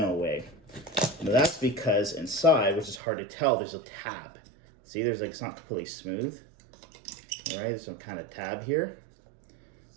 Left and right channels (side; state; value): left; drops out; at 3.0 s